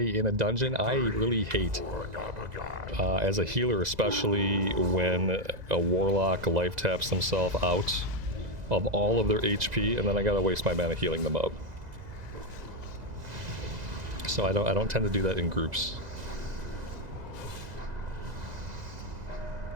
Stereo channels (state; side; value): late; left; 2.0 ms